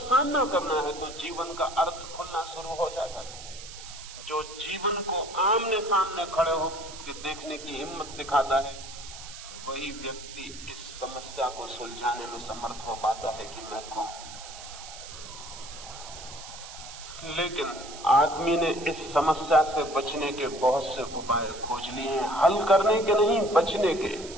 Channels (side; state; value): right; noise; hiss, 13 dB below the sound